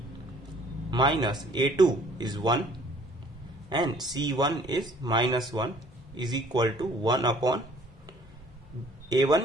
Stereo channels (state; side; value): normal; both; correlation 0.56